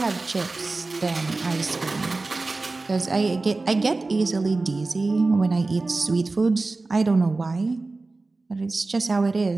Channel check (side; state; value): left; quieter; 3.5 dB